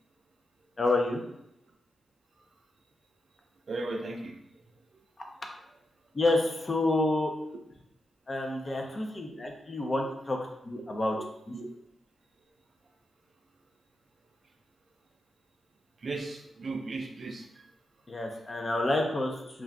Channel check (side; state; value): both; normal; correlation 0.86